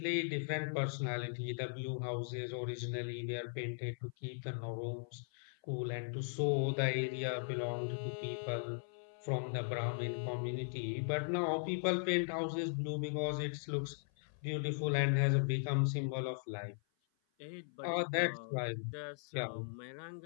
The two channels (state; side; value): silent; right; 52 dB below the other